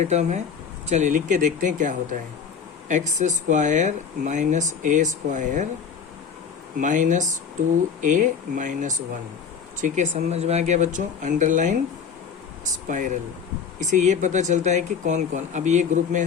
टर्म है। चलिए लिख के देखते हैं क्या होता है, एक्स स्क्वायर माइनस ए स्क्वायर माइनस 2a माइनस 1। ठीक है, समझ में आ गया बच्चों, अंडरलाइन स्पाइरल। इसे ये पता चलता है कि कौन कौन। अब ये ग्रुप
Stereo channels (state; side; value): quieter; right; 6.6 dB